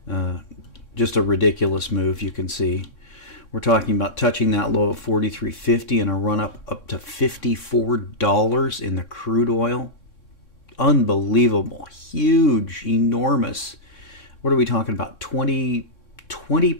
just a ridiculous move, you can see. We're talking about touching that low of 43.50 and a run up to $54 in the crude oil. Unbelievable, huge, enormous. What are we talking about? 20%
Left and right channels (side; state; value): right; late; 3.6 ms